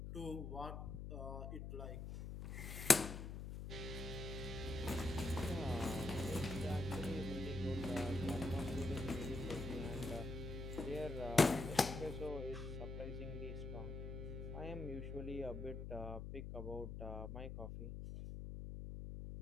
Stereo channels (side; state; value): left; noise; hum, 6 dB below the sound